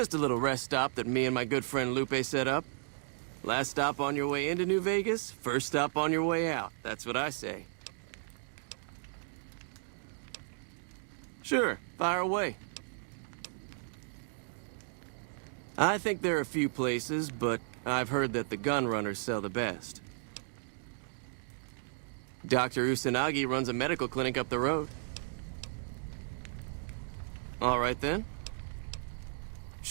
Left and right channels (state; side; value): silent; left; digital silence